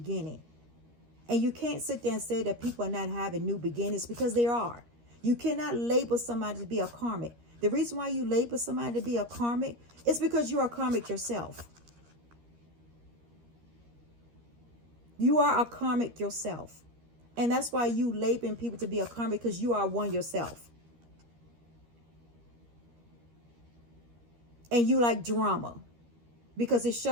And you can't sit there and say that people are not having new beginnings, because they are. You cannot label somebody to be a karmic. The reason why you label somebody to be a karmic is because you are karmic yourself. You are a karmic yourself. And that's why you labeling people to be a karmic, because you are one yourself. And you like drama, because it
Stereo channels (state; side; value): late; left; 13 ms